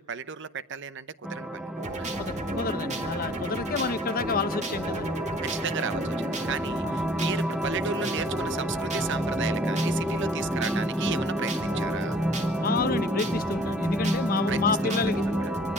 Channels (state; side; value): normal; both; correlation 0.53